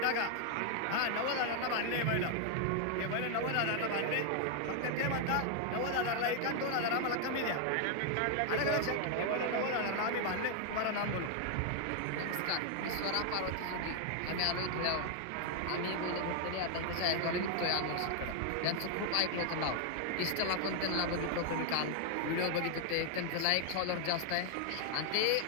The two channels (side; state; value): both; different; correlation 0.00